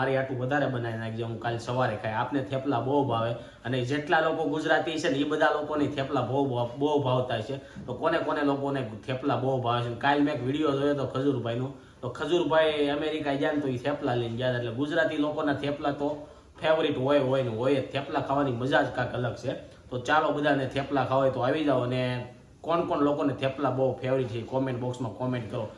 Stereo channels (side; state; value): both; identical; correlation 1.00